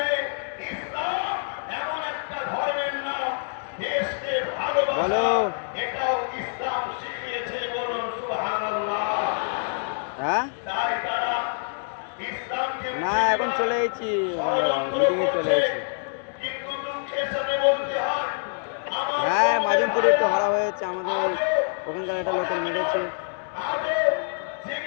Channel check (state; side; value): silent; right; digital silence